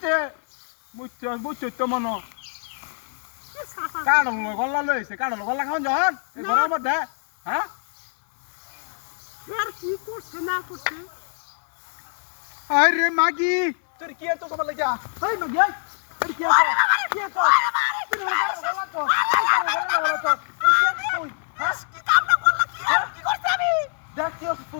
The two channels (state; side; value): silent; right; digital silence